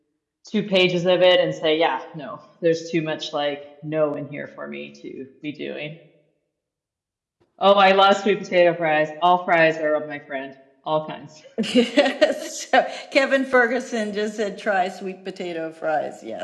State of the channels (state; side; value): identical; both; correlation 1.00